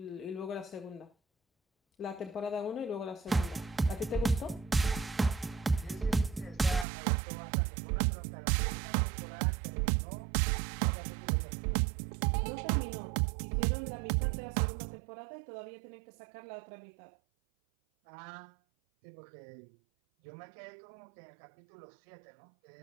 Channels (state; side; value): drops out; left; at 6.9 s